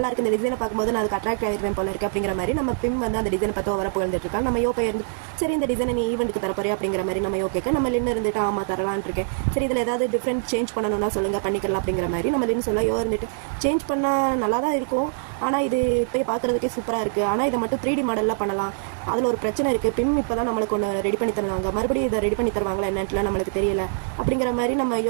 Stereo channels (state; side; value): silent; left; digital silence